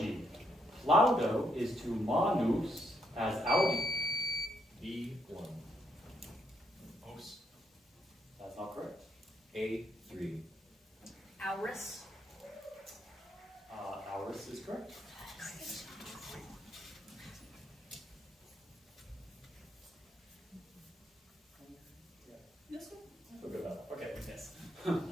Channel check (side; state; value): both; normal; correlation 0.75